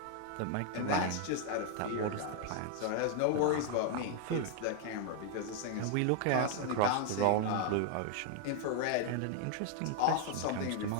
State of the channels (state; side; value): different; both; correlation 0.00